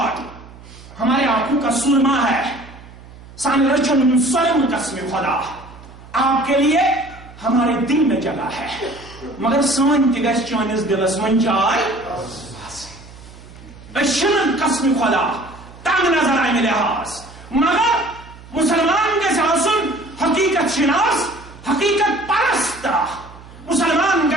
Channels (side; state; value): right; noise; hum, 19 dB below the sound